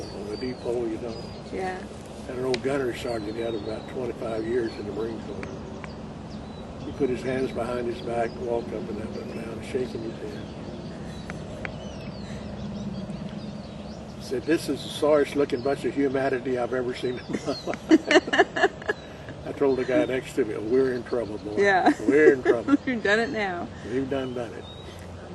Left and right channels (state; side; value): identical; both; correlation 1.00